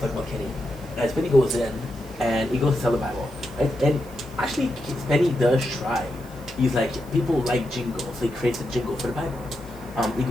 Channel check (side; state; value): left; noise; hiss, 24 dB below the sound